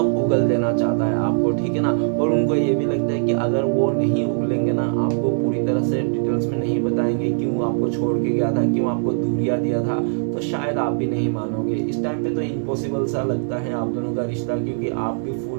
उगल देना चाहता है आपको, ठीक है ना। और उनको ये भी लगता है कि अगर वो नहीं उगलेंगे ना, आपको पूरी तरह से डिटेल्स में नहीं बताएंगे क्यों आपको छोड़ के गया था, क्यों आपको दूरिया दिया था, तो शायद आप भी नहीं मानोगे। इस टाइम पे तो इम्पॉसिबल सा लगता है आप दोनों का रिश्ता, क्योंकि आप भी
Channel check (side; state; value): left; silent; digital silence